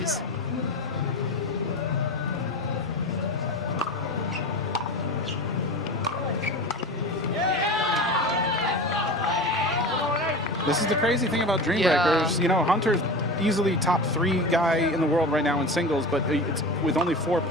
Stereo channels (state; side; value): normal; both; correlation 0.29